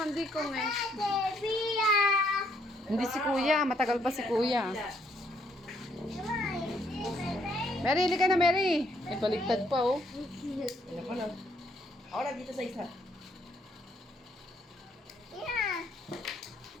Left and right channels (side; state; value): both; normal; correlation 0.70